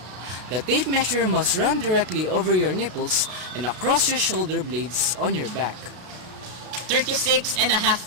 The tape measure must run directly over your nipples and across your shoulder blades on your back.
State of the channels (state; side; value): late; left; 33 ms